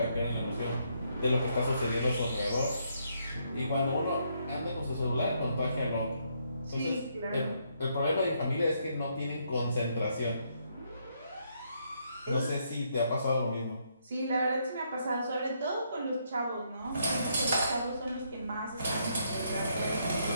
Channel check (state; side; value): inverted; both; correlation -0.74